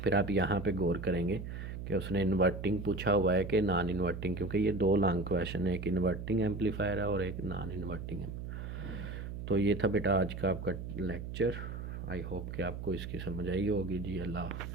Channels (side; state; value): right; noise; hum, 7 dB below the sound